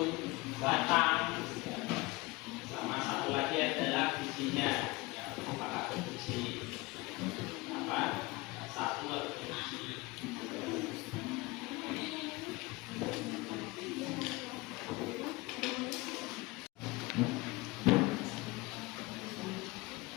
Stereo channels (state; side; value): quieter; right; 23.0 dB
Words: batang, ya. Sama satu lagi adalah bijinya. Ya, apakah berbiji satu atau berbiji.